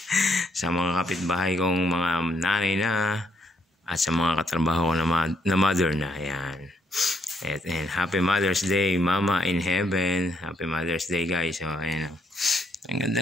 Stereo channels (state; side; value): normal; both; correlation 0.73